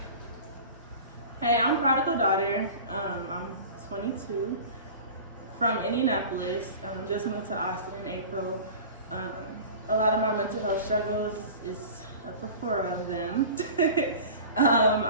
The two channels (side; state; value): both; inverted; correlation -0.37